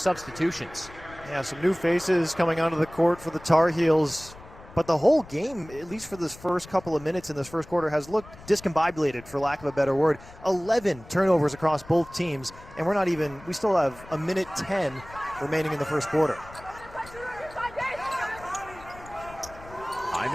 Yeah, some new faces coming onto the court for the Tar Heels. But the whole game, at least for this first couple of minutes in this first quarter, has looked discombobulated, for lack of a better word. 11 turnovers across both teams, and we still have a minute 10 remaining in the first quarter.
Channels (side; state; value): left; noise; rumble, 19 dB below the sound